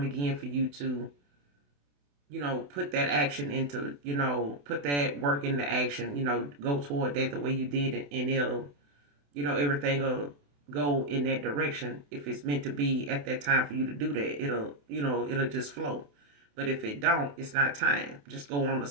again for you to, put that action into, put that work into action, go toward that the way you did it, and it'll, everything will go in that direction. If it's meant to be at that time for you to do that, it'll just flow. But if it don't, it's not time. Just go on to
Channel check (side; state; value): left; late; 28 ms